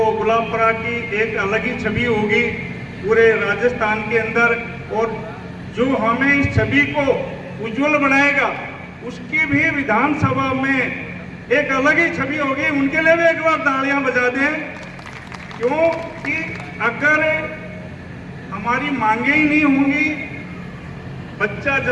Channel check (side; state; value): both; identical; correlation 1.00